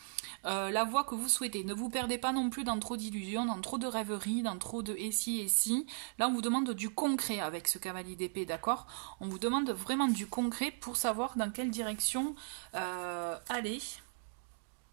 la voie que vous souhaitez. Ne vous perdez pas non plus dans trop d'illusions, dans trop de rêveries, dans trop de et si. Là, on vous demande du concret avec ce cavalier d'épée, d'accord? On vous demande vraiment du concret pour savoir dans quelle direction aller.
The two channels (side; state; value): left; silent; digital silence